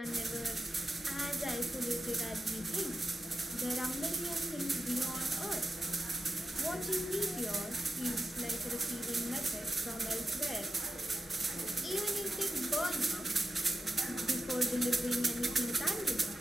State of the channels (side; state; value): both; normal; correlation 0.91